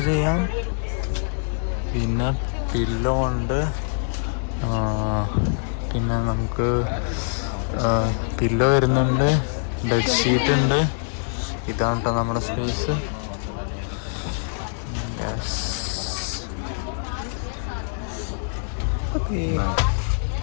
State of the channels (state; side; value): silent; right; digital silence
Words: ചെയ്യാം. പിന്നെ പില്ലോ ഉണ്ട്. പിന്നെ നമുക്ക് പില്ലോ വരുന്നുണ്ട്. ബെഡ്ഷീറ്റ് ഉണ്ട്. ഇതാണ് കേട്ടോ നമ്മുടെ സ്പേസ്.